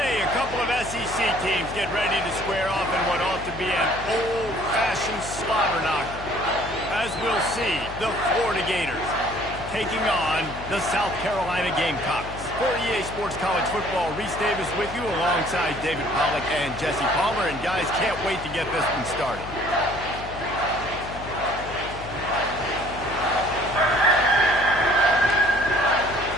a couple of SEC teams get ready to square off in what ought to be an old-fashioned slobber knocker. As we'll see, the Florida Gators taking on the South Carolina Gamecocks. For EA Sports College Football, Reese Davis with you alongside David Pollack and Jesse Palmer. And guys, can't wait to get this one started.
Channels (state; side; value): noise; left; hum, 12 dB below the sound